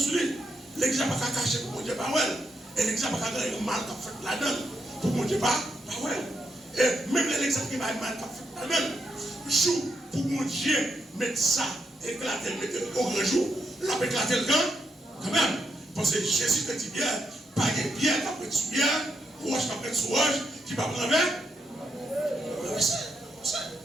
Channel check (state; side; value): normal; both; correlation 0.81